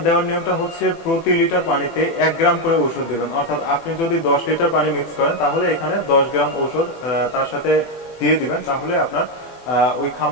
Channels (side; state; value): right; late; 24 ms